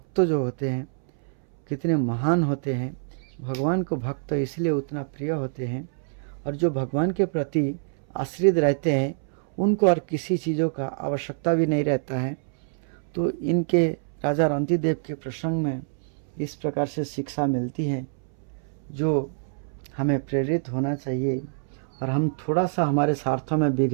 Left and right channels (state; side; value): silent; left; 61 dB below the other